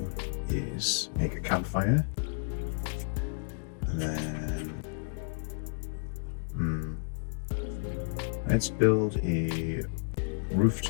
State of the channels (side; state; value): right; silent; digital silence